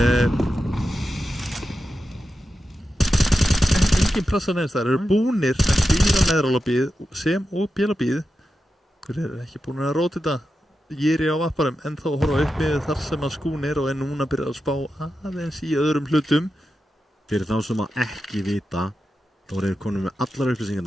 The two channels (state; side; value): normal; both; correlation 0.90